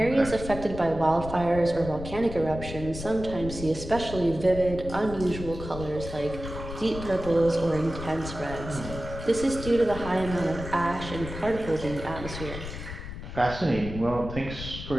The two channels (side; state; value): left; noise; rumble, 9 dB below the sound